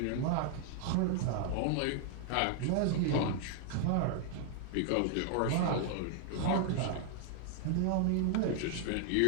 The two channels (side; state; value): both; different; correlation 0.00